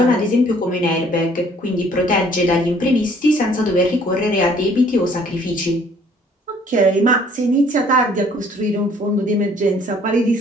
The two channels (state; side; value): normal; both; correlation 0.58